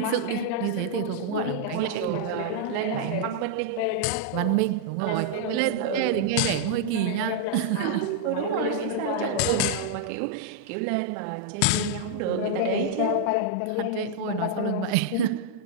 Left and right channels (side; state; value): both; different; correlation -0.01